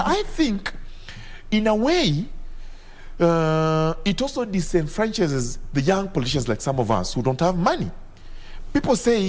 I think, in a way, it also disenfranchises the young politicians like some of us who don't have money. People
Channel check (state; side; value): identical; both; correlation 1.00